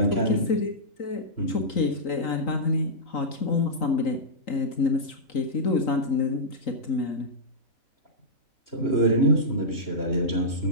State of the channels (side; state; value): right; late; 3.9 ms